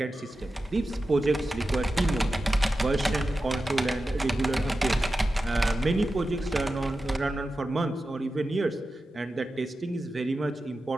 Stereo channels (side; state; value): both; normal; correlation 0.93